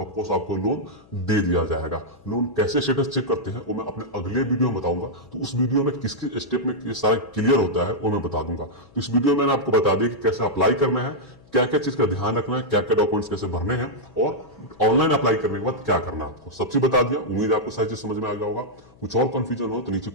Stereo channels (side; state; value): left; noise; hum, 27 dB below the sound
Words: ऑफकोर्स आपको लोन दे दिया जाएगा। लोन कैसे स्टेटस चेक करते हैं वो मैं अपने अगले वीडियो में बताऊंगा। तो उस वीडियो में किसके स्टेप में ये सारा क्लियर होता है वो मैं बता दूंगा। तो इस वीडियो में मैंने आपको बता दिया कि कैसे अप्लाई करना है, क्या क्या चीज का ध्यान रखना है, क्या क्या डॉक्यूमेंट्स कैसे भरने हैं, और ऑनलाइन अप्लाई करने के बाद क्या करना है आपको, सब चीज बता दिया। उम्मीद है आपको सारी चीज समझ में आ गया होगा। कुछ और कंफ्यूजन हो तो नीचे